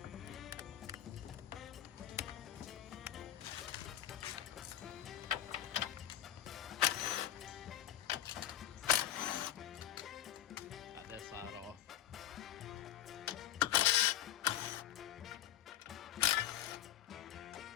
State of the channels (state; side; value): quieter; right; 11.7 dB